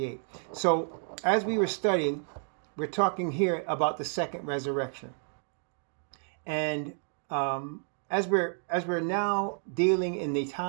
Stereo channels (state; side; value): silent; left; 57 dB below the other